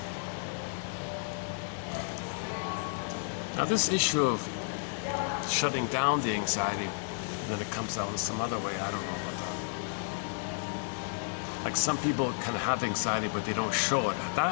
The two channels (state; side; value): silent; right; digital silence